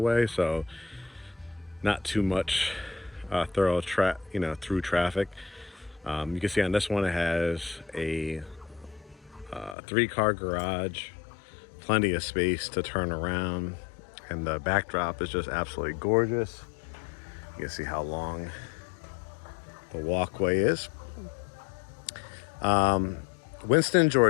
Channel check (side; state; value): right; drops out; at 9.8 s